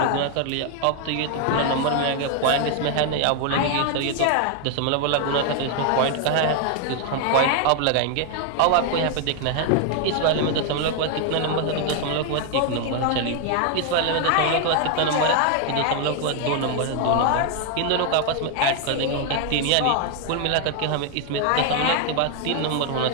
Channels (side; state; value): both; different; correlation 0.00